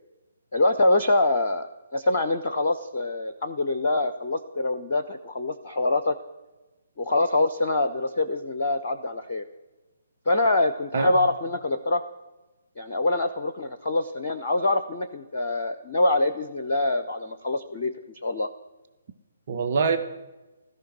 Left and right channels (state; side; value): inverted; both; correlation -0.79